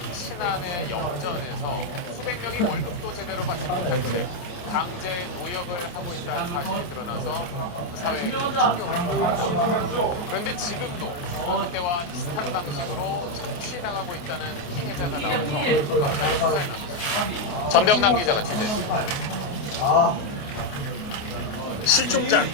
신안의 염전에서 수백 명이 월급도 제대로 받지 못한 채 강제 노역을 하고 있다는 사실이 드러나서 사회에 큰 충격을 받았습니다. 그런데 지금도 그때와 비슷한 방식으로 착취당하고 있다는 피해자가 나와서 경찰에 수사에 나갔습니다. 전병남 기자가 취재했습니다. 실종자,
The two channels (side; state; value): right; late; 28 ms